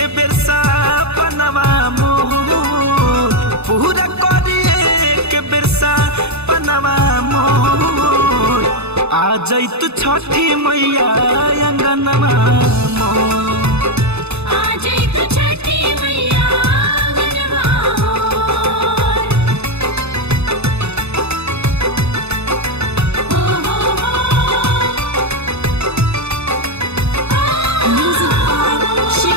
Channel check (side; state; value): left; late; 0.80 ms